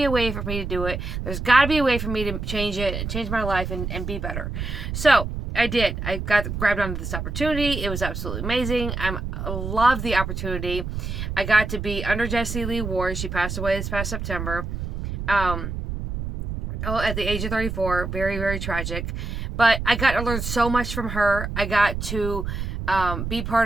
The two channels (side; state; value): right; noise; rumble, 5 dB below the sound